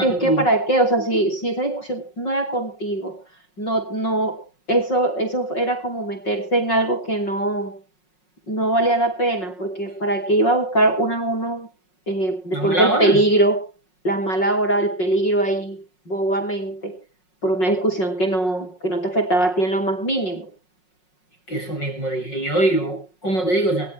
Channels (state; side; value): late; right; 5.5 ms